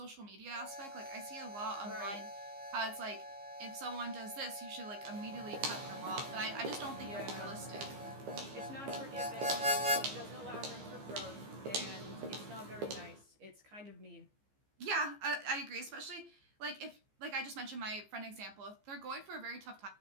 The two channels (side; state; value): left; late; 15 ms